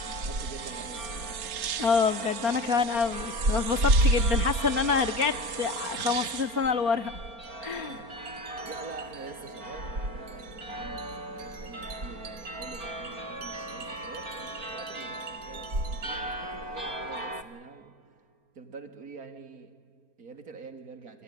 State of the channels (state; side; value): late; left; 4.3 ms